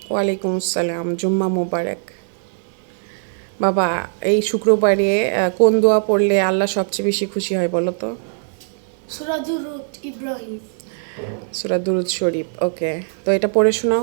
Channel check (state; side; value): silent; left; 55 dB below the other